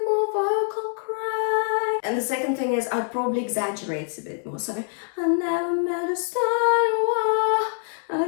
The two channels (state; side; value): silent; right; digital silence